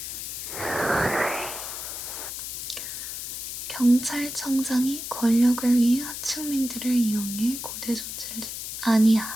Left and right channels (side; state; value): left; noise; hiss, 7 dB below the sound